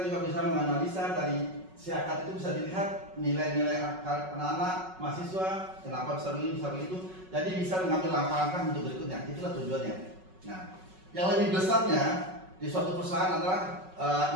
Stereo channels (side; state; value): left; late; 5.4 ms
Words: juga bisa menganalisa dari SIAKA itu bisa dilihat nilai-nilai anak-anak mahasiswa, kenapa bisa begini, bisa begitu. Jadi bisa mengambil langkah-langkah untuk berikutnya. Itulah tujuannya. Nah, yang lebih besarnya di suatu perusahaan adalah